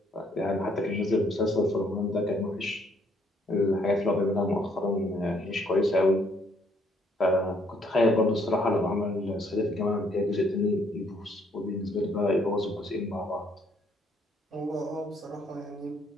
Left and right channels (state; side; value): normal; both; correlation 0.68